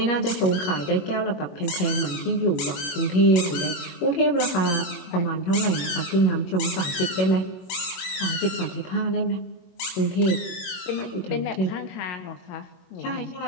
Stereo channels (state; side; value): late; right; 22 ms